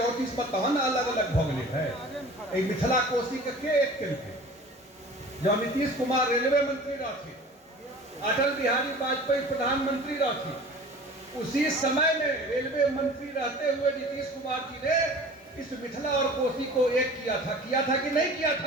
में तहन अलग अलग भ गए है। मिथिला कोसी के एक केलकै? जब नीतीश कुमार रेलवे मंत्री रहते, अटल बिहारी वाजपेयी प्रधानमंत्री रहते, उसी समय में रेलवे मंत्री रहते हुए नीतीश कुमार जी ने इस मिथिला और कोसी को एक किया था कि नहीं किया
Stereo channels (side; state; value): both; normal; correlation 0.42